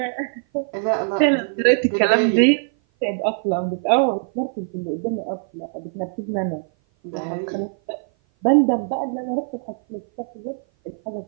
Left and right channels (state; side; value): silent; left; 56 dB below the other